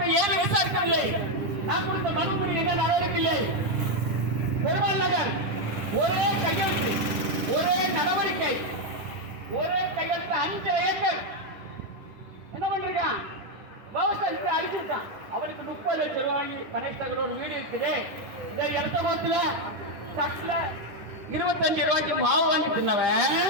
ஏன் விசாரிக்கவில்லை? நான் கொடுத்த மனுவில் என்ன நடவடிக்கை இல்லை? பெருமாள் நகர் ஒரே கையெழுத்து, ஒரே நடவடிக்கை, ஒரே கையெழுத்து 5 ஏக்கர் என்ன பண்றான்? விவசாயத்தை அழிச்சிருக்கான். அவனுக்கு 30 லட்சம் ரூபாய் வாங்கி கணேஷ் நகர் ஒரு வீடு இருக்குது. இந்த இடத்த கோத்துல சட்டில 25 ரூபாய்க்கு மாவு வாங்கி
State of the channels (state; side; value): late; left; 10 ms